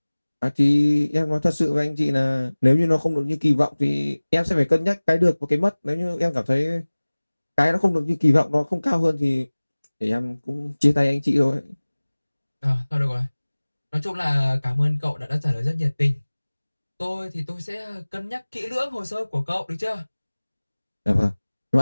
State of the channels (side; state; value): both; inverted; correlation -1.00